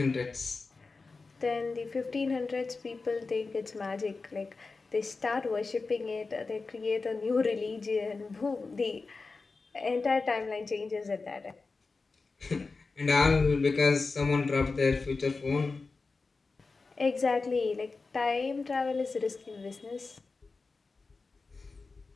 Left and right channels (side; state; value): right; quieter; 4.0 dB